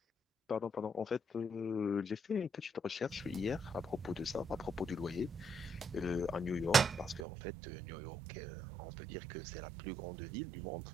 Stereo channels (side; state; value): left; drops out; at 7.2 s